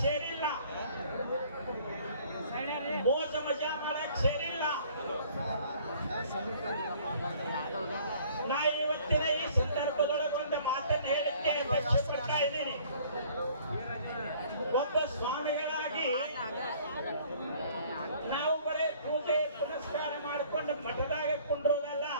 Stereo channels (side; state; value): both; inverted; correlation -0.55